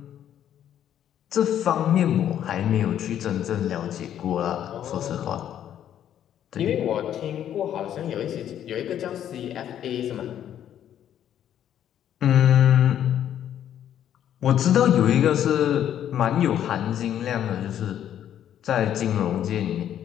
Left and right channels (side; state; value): right; quieter; 10.4 dB